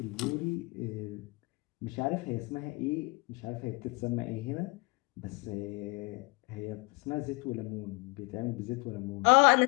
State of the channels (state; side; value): quieter; right; 27.5 dB